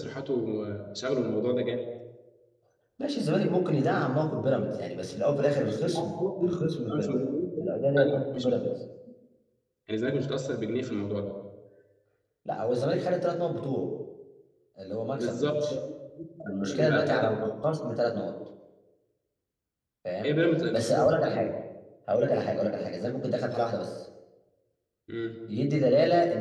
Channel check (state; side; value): identical; both; correlation 1.00